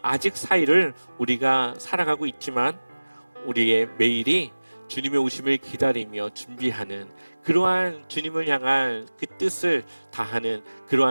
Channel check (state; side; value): inverted; both; correlation -1.00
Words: 아직 사이를 우리가 살아가고 있지만 우리의 매일이 주님의 오심을 기다리며 준비하는 그러한 주님을 향한 그 뜻을 다하는